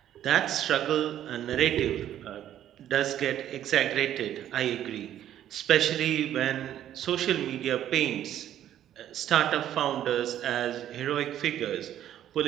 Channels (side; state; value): left; quieter; 11.4 dB